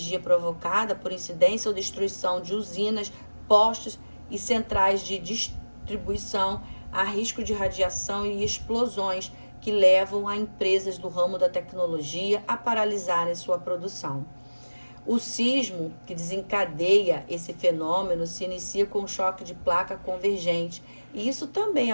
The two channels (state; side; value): inverted; both; correlation -1.00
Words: provocada por incidência ou destruição de usinas, postos e centrais de distribuição, há risco de radiação e explosões que levam a empresas do ramo da tecnologia a paralisarem sua produção. O sismo que desencadeia esse fenômeno se inicia com um choque de placa convergente, e isso também